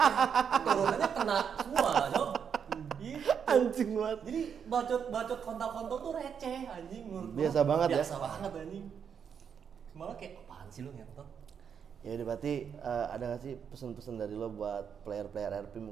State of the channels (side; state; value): left; quieter; 7.4 dB